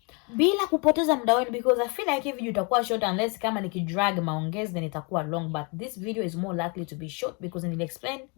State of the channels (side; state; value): right; quieter; 32.0 dB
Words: bila kupoteza muda wenu, because I feel like if video itakuwa short unless kama nikidrag maongezi then itakuwa long, but this video is more likely to be short because nili explain